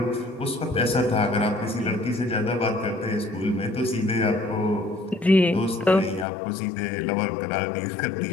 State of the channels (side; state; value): right; drops out; at 6.2 s